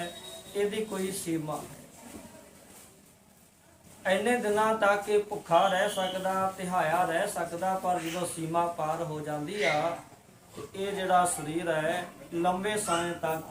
ਇਹਦੀ ਕੋਈ ਸੀਮਾ ਹੈ। ਇੰਨੇ ਦਿਨਾਂ ਤੱਕ ਇਹ ਭੁੱਖਾ ਰਹਿ ਸਕਦਾ, ਤਿਹਾਇਆ ਰਹਿ ਸਕਦਾ, ਪਰ ਜਦੋਂ ਸੀਮਾ ਪਾਰ ਹੋ ਜਾਂਦੀ ਆ ਤੇ ਇਹ ਜਿਹੜਾ ਸਰੀਰ ਹੈ ਲੰਬੇ ਸਮੇਂ ਤੱਕ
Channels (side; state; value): both; identical; correlation 1.00